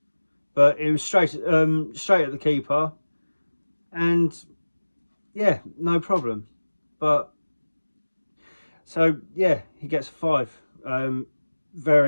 but it was straight at the keeper, and yeah, no problem. But so yeah, he gets a 5.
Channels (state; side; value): inverted; both; correlation -1.00